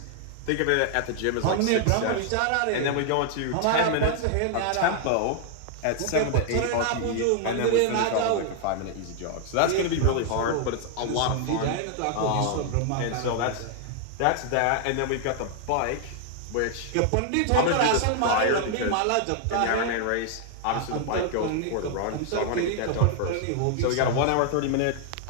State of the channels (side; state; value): both; different; correlation 0.00